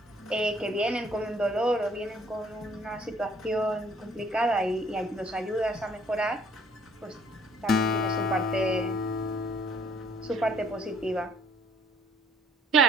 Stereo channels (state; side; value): normal; both; correlation 0.60